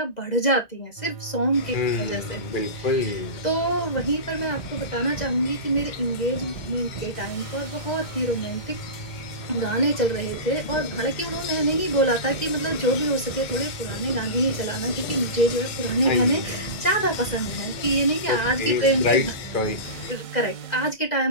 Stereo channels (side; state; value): right; late; 2.2 ms